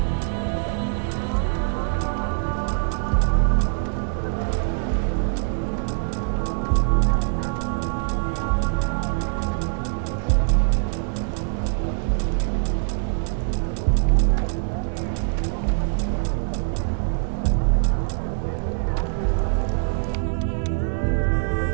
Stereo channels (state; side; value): silent; left; digital silence